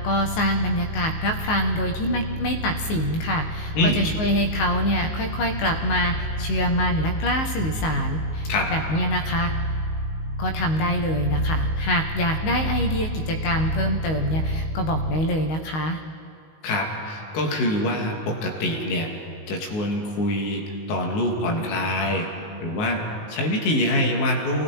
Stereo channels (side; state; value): right; late; 19 ms